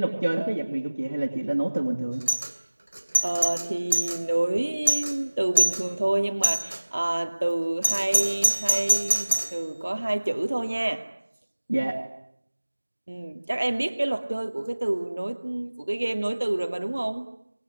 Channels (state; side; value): inverted; both; correlation -1.00